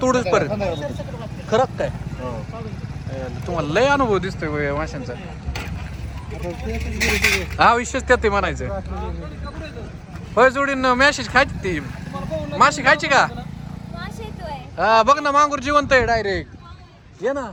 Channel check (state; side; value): identical; both; correlation 1.00